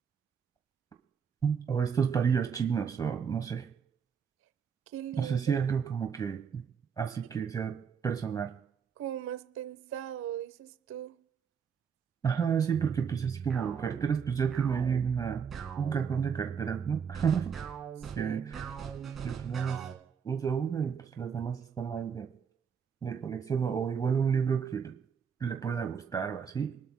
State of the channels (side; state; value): left; quieter; 6.8 dB